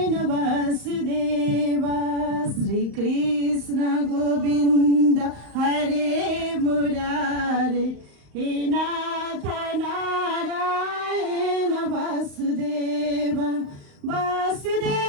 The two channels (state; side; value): late; left; 36 ms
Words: वासुदेव। श्री कृष्ण गोविन्द हरे मुरारे, हे नाथ नारायण वासुदेव।